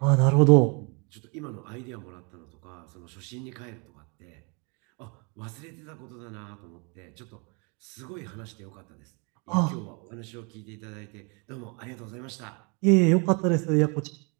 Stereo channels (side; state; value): left; quieter; 33.0 dB